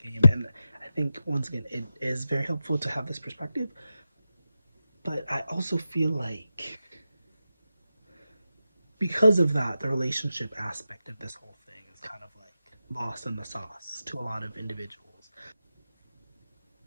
and I think once again it is very helpful to have this perspective. But I also feel like because of that, the relationship aspect of this whole thing is kind of like lost in the sauce to a lot of individuals.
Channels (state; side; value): inverted; both; correlation -0.91